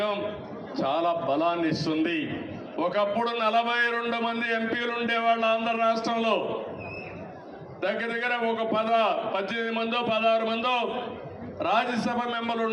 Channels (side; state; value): both; identical; correlation 1.00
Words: చాలా బలాన్ని ఇస్తుంది. ఒకప్పుడు 42 మంది ఎంపీలు ఉండేవాళ్ళు ఆంధ్ర రాష్ట్రంలో. దగ్గర ఒక 18 మందో 16 మందో రాజ్యసభ మెంబర్లు